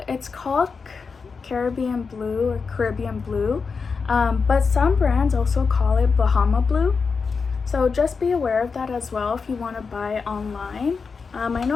it's called Caribbean blue or Caribbean blue, but some brands also call it Bahama blue. So just be aware of that as well if you want to buy online. I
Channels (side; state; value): right; quieter; 5.1 dB